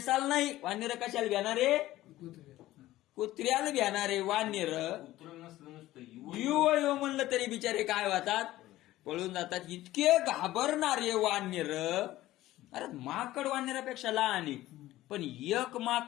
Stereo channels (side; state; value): right; quieter; 15.8 dB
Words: नाही वानर कशाला घेणारे? कुत्र्याला घेणारे वानर. युव म्हणलं तरी बिचारे काय होतात? पळून जातात. इतके घाबरणारे वानर अरे माकड वानरापेक्षा लहान आहे, पण एक